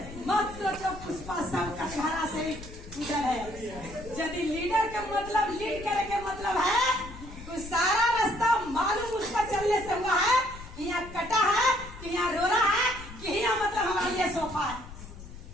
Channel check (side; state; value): left; noise; rumble, 14 dB below the sound